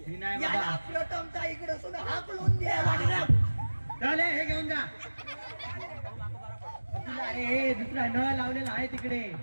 ही नाही याला बाबा. प्रथमता इकडे सुद्धा हाकलून द्या. चल हे घेऊन जा. तुला अरे हे दुसरा नळ लावलेला आहे तिकडे.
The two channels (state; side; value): inverted; both; correlation -1.00